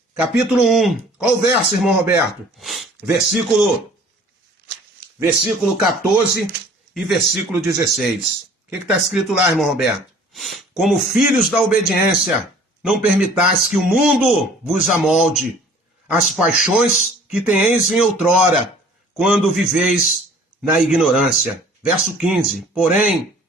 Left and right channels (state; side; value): normal; both; correlation 0.51